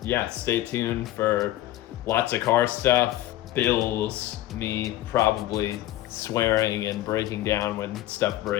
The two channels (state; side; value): quieter; right; 15.0 dB